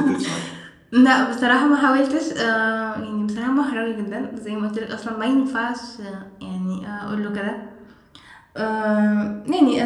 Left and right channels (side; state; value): both; identical; correlation 1.00